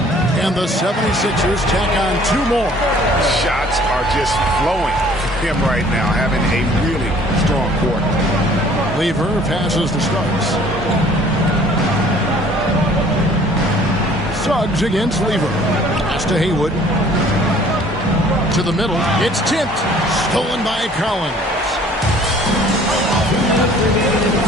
And the 76ers tack on 2 more. Shots are just flowing for him right now, having a really strong quarter. Lever passes to Suggs. Suggs against Lever. Pass to Haywood. To the middle. It's tipped. Stolen by Collins.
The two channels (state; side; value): normal; both; correlation 0.54